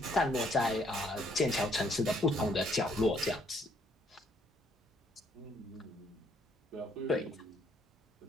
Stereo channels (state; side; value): normal; both; correlation 0.68